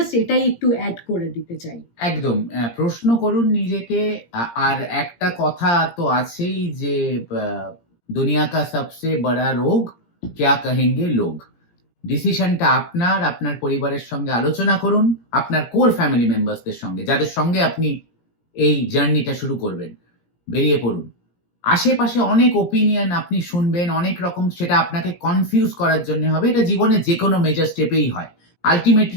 এটাই একটু অ্যাড করে দিতে চাই। একদম, প্রশ্ন করুন নিজেকে। আর একটা কথা তো আছেই, যে দুনিয়া কা সবসে বড়া রোগ ক্যা কহেঙ্গে লোগ। ডিসিশনটা আপনার পরিবারের সঙ্গে আলোচনা করুন, আপনার কোর ফ্যামিলি মেম্বার্সদের সঙ্গে, যাদের সঙ্গে আপনি এই জার্নিটা শুরু করবেন। বেরিয়ে পড়ুন। আশেপাশে অনেক ওপিনিয়ন আপনি শুনবেন, অনেক রকম, সেটা আপনাকে কনফিউজ করার জন্য হবে। এটা জীবনে যে কোনো মেজর স্টেপেই হয়।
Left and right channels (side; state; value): right; late; 17 ms